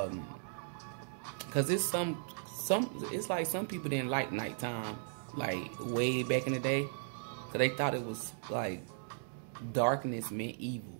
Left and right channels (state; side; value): silent; left; 53 dB below the other